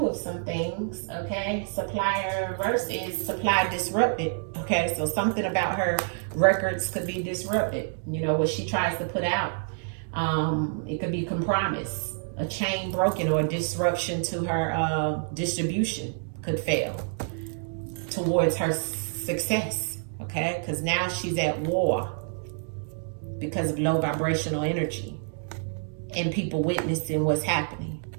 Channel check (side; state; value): left; silent; 60 dB below the other